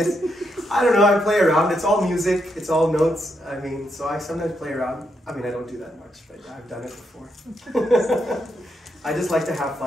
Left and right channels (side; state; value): both; normal; correlation 0.80